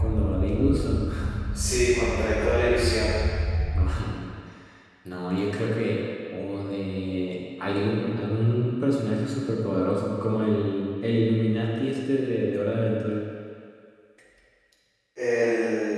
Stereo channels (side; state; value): both; identical; correlation 1.00